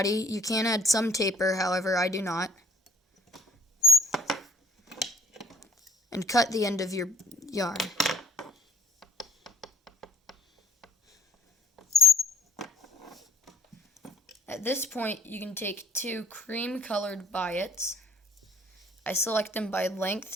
You can add some taper, however I do not. And cut the end of your yarn. At this point, you can take 2 cream-colored biots. I select them by length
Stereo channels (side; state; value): both; normal; correlation 0.62